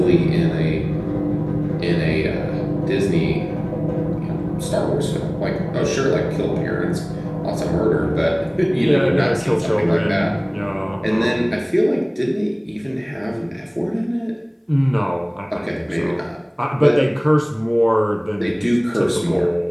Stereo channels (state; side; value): identical; both; correlation 1.00